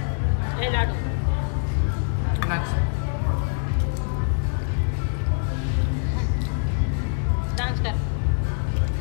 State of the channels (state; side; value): silent; right; digital silence